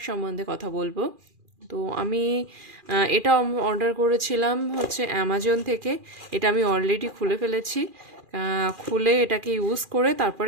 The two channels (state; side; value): late; left; 2.4 ms